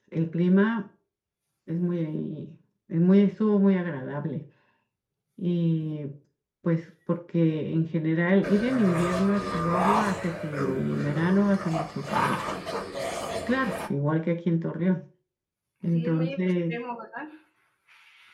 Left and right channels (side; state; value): both; identical; correlation 1.00